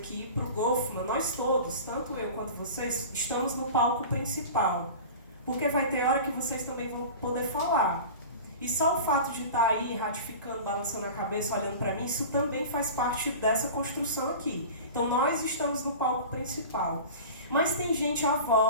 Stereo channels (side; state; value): both; inverted; correlation -0.35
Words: para o Goffman, nós todos, tanto eu quanto vocês, estamos no palco principal. Porque vai ter hora que vocês também vão poder falar. E só o fato de estar aí ratificando, balançando a cabeça, olhando para mim, isso também faz parte dessa construção aqui. Então nós estamos no palco principal. Mas tem gente à